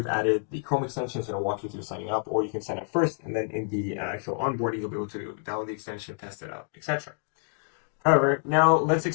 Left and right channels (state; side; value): silent; right; 59 dB below the other